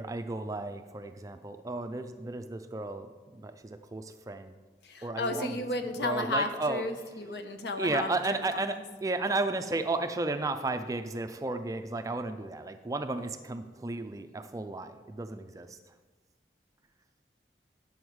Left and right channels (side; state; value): both; normal; correlation 0.34